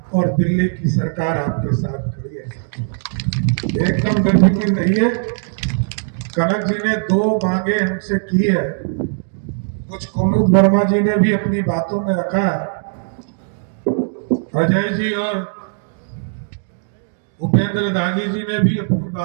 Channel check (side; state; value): left; silent; digital silence